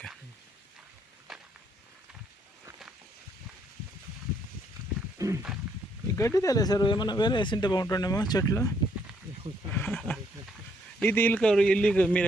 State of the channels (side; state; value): both; normal; correlation 0.71